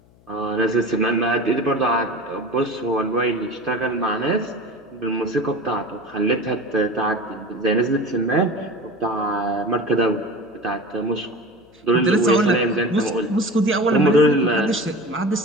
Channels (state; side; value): noise; left; hum, 29 dB below the sound